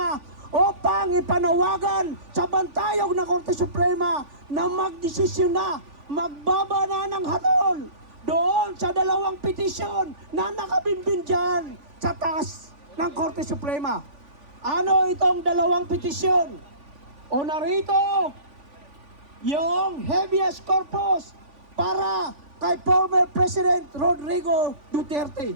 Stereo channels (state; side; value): late; left; 3.5 ms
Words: upang ipanawagan sa bantayog ng Korte Suprema na magdesisyon na, magbaba na ng hatol doon sa 2 petisyon na nakabinbin dyan sa taas ng Korte Suprema. Ano itong 2 petisyon? O narito yung habeas corpus para kay former President Rodrigo Duterte.